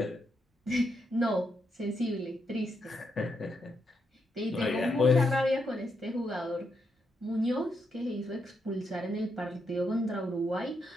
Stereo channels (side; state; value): both; normal; correlation 0.80